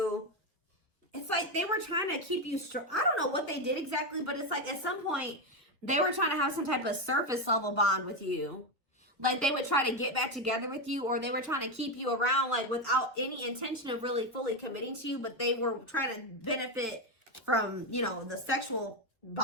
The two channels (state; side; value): normal; both; correlation 0.10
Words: it's like they were trying to keep you strong. I don't know what they did exactly, but it's like at some point they were trying to have some type of surface level bond with you. Like they would try to get back together with you, or they were trying to keep you around like without any intention of really fully committing to you, but they were trying to benefit from, you know, the sexual